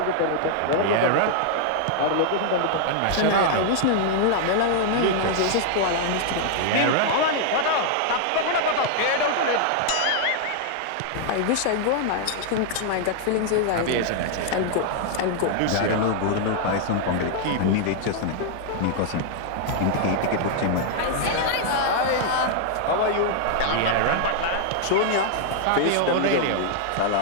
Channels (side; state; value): both; different; correlation 0.00